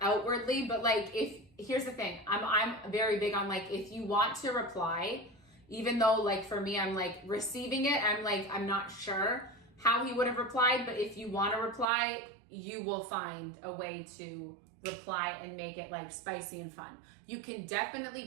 outwardly, but like, here's the thing. I'm very big on like, if you want to reply, even though like for me, I'm like receiving it, I'm not sure how he would have replied, but if you want to reply, you will find a way to reply and make it like spicy and fun. You can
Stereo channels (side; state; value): left; drops out; at 11.9 s